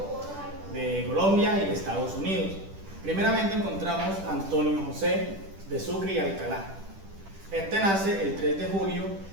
de Colombia y de Estados Unidos. Primeramente encontramos a Antonio José de Sucre y Alcalá. Este nace el 3 de julio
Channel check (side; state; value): left; late; 10 ms